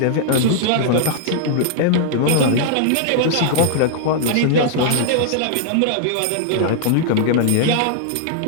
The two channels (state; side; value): different; both; correlation -0.01